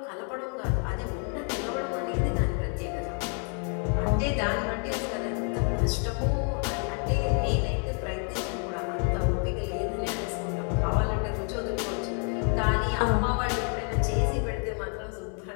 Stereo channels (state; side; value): quieter; right; 39.2 dB